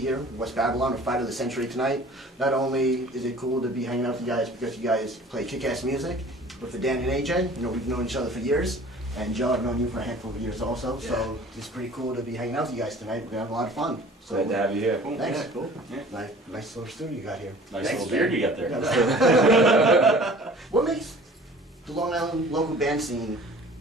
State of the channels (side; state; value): both; normal; correlation 0.47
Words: in West Babylon with Fight of the Century tonight. Not only is it cool to be hanging out with you guys because you guys play kick-ass music, but for Dan and AJ, you know, we've known each other for years. And Joe, I've known you for a handful of years also, so it's pretty cool to be hanging out with you guys tonight. We're going to have a lot of fun. So, Glad to have you here. Cool. Thanks. Yeah, cool. Yeah. Nice little studio you got here. Nice little beard you got there. What makes the Long Island local band scene